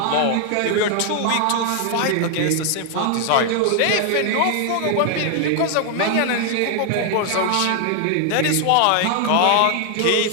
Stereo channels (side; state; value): both; different; correlation 0.00